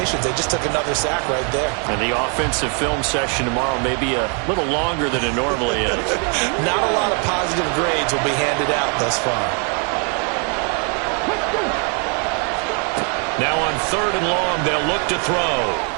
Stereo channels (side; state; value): left; quieter; 38.1 dB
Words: They just took another sack right there. And the offensive film session tomorrow may be a little longer than it normally is. Not a lot of positive grades will be handed out thus far. Now on 3rd and long, they'll look to throw.